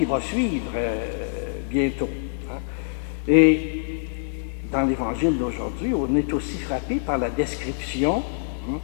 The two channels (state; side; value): silent; right; 62 dB below the other